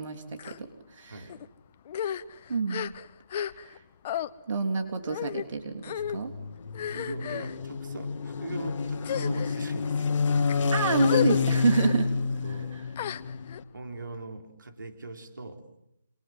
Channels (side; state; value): both; inverted; correlation -0.75